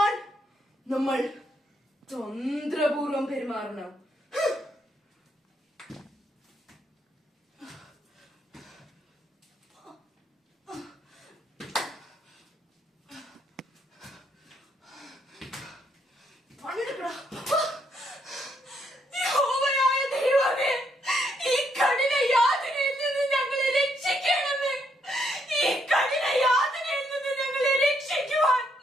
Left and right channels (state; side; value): normal; both; correlation 0.74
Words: നമ്മൾ തന്ത്രപൂർവം പെരുമാറണം.